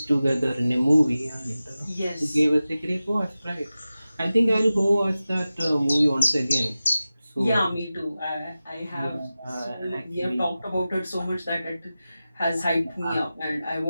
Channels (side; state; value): both; inverted; correlation -0.95